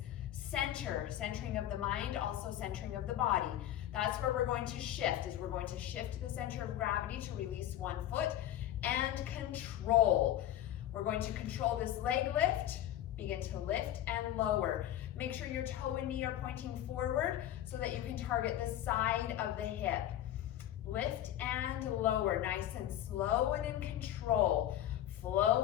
centering of the mind, also centering of the body. That's where we're going to shift, is we're going to shift the center of gravity to release one foot, and control. We're going to control this leg lift, begin to lift and lower. Make sure your toe and knee are pointing forward so that you can target the side of the hip. Lift and lower, nice and slow and in control.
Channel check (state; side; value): quieter; right; 12.3 dB